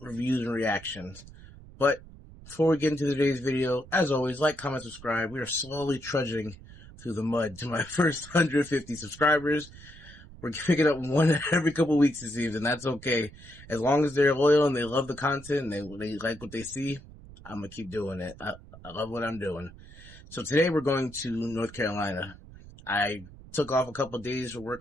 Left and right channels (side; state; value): right; noise; rumble, 19 dB below the sound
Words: reviews and reactions. But before we get into today's video, as always, like, comment, subscribe. We are slowly trudging through the mud to my first 150 subscribers. We're picking up one every couple weeks, it seems, and that's okay. As long as they're loyal and they love the content and they like what they see, I'm going to keep doing it. I love what I'm doing. So today we're going to North Carolina. I took off a couple of days for